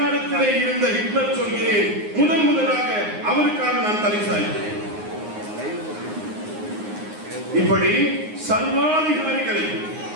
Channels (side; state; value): left; late; 9.6 ms